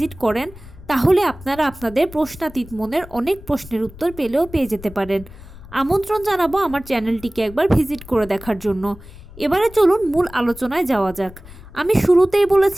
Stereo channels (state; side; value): noise; left; rumble, 18 dB below the sound